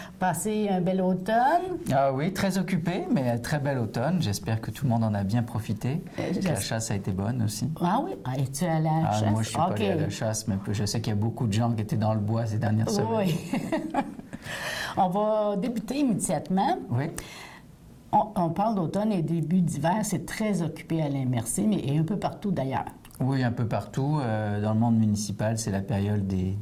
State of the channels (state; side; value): identical; both; correlation 1.00